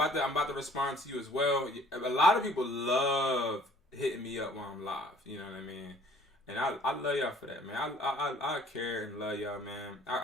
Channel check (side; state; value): both; normal; correlation 0.54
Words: to respond to you as well. A lot of people love hitting me up while I'm live, you know what I mean? And I love y'all for that, man. I care and love y'all, man.